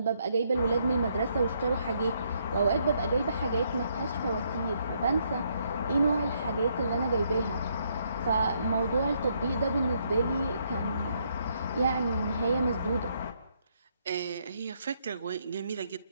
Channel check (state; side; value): inverted; both; correlation -0.73